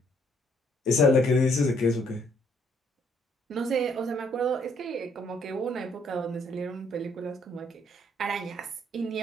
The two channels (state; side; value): normal; both; correlation 0.67